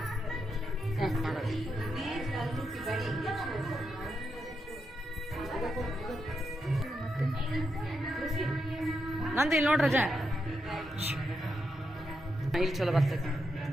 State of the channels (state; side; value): normal; both; correlation 0.84